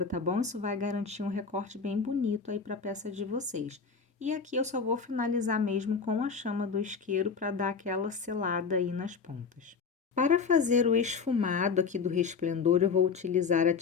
tá bom? Isso vai garantir um recorte bem bonito aí para a peça de vocês. E aqui eu só vou finalizar mesmo com a chama do isqueiro para dar aquela selada aí nas pontas. Para fazer o esfumado aqui do resplendor, eu vou utilizar a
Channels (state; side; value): quieter; right; 5.5 dB